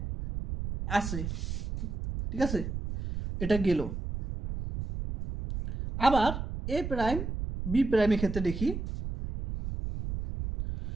আছে। ঠিক আছে, এটা গেল। আবার এ প্রাইম বি প্রাইমের ক্ষেত্রে দেখি,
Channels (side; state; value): right; noise; rumble, 5 dB below the sound